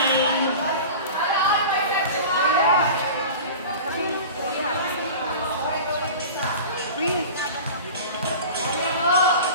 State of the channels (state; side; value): inverted; both; correlation -0.35